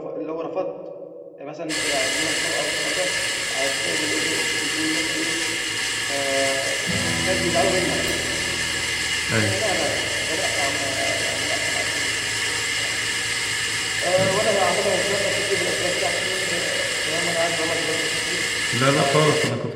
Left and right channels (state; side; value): identical; both; correlation 1.00